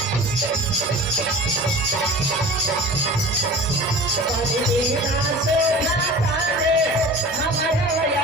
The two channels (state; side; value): normal; both; correlation 0.39